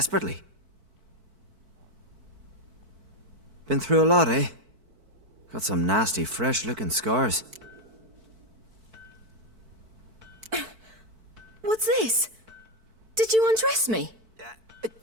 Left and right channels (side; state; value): left; late; 4.5 ms